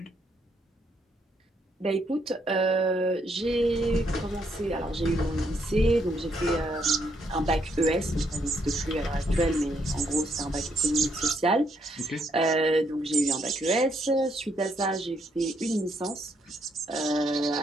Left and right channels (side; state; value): both; normal; correlation 0.74